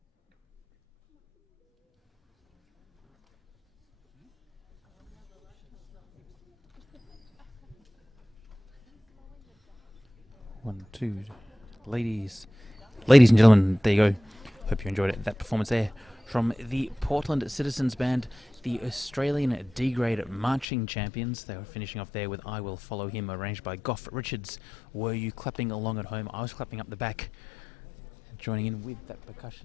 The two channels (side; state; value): right; drops out; at 20.7 s